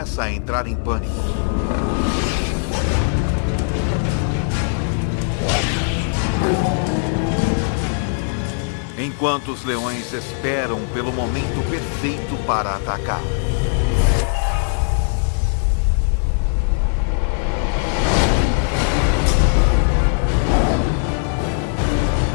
a entrar em pânico. Enquanto os leões esperam pelo momento perfeito para atacar.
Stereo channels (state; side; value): silent; right; 66 dB below the other